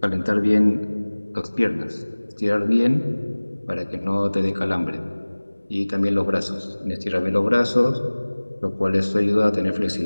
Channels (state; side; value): inverted; both; correlation -1.00